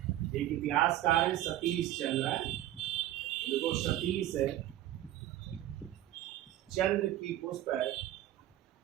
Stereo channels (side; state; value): left; quieter; 13.4 dB